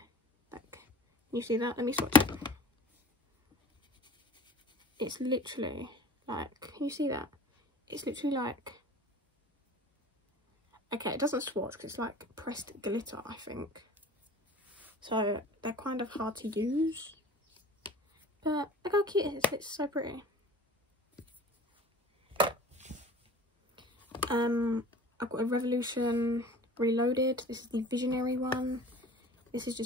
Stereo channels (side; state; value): both; normal; correlation 0.43